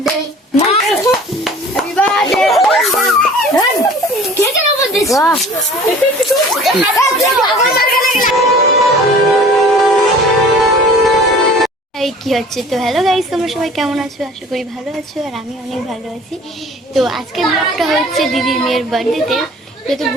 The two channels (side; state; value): both; normal; correlation 0.47